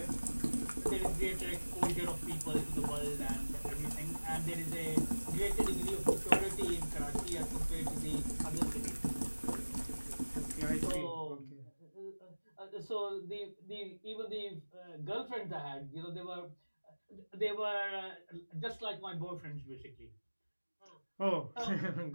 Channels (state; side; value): inverted; both; correlation -1.00